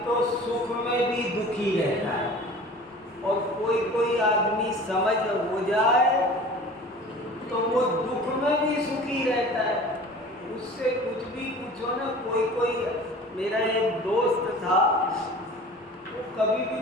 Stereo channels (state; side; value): normal; both; correlation 0.42